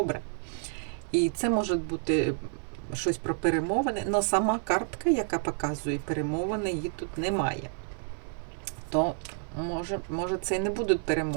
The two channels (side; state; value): left; silent; 58 dB below the other